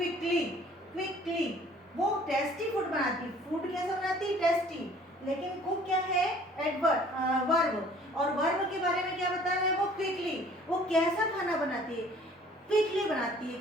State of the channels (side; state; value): both; normal; correlation 0.54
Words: quickly वो टेस्टी फूड बनाती। फूड कैसा बनाती? टेस्टी, लेकिन कुक क्या है? Adverb, verb. और वर्ब के बारे में क्या बता रहा है? वो क्विकली, वो कैसा खाना बनाती है? क्विकली बनाती है,